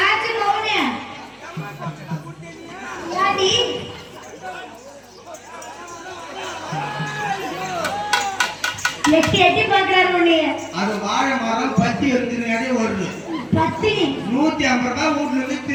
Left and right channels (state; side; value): identical; both; correlation 1.00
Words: மௌனே யாடி எட்டி எட்டி பாக்குறாரு உன்னைய. அது வாழை மரம் பத்தி எடுத்துனாலே ஓடுது. பத்தி 150 ரூபாய் வீட்டுல இருந்து